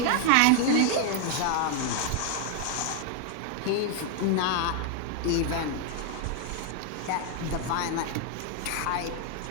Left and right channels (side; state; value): both; different; correlation 0.00